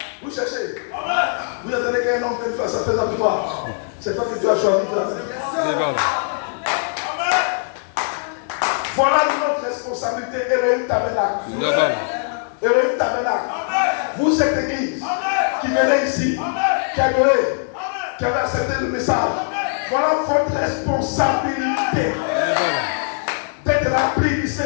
Vous cherchez. Vous attendez qu'un homme vienne faire sa fête avec toi. C'est toi que Dieu a choisi. Les balles. Voilà notre responsabilité. Elohim Tabernacle. La balle. Elohim Tabernacle. Vous, cette église qui venez ici, qui avez accepté le message, voilà votre responsabilité Les balles. d'être rempli du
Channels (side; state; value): right; silent; digital silence